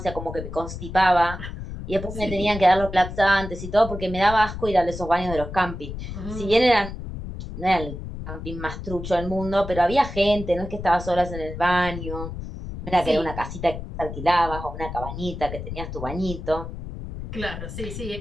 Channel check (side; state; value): left; noise; rumble, 9 dB below the sound